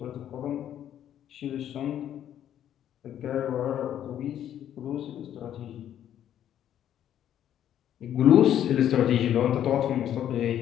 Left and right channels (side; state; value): right; quieter; 10.6 dB